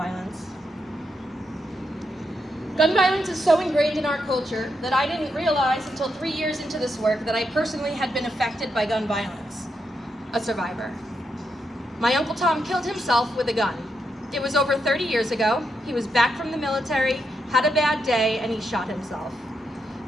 Gun violence is so ingrained in our culture that I didn't realize until 3 years into this work that I personally had been affected by gun violence, a survivor. My Uncle Tom killed himself with a gun. It was over 30 years ago. He was back from the military, had a bad day, and he shot himself.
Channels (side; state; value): both; normal; correlation 0.83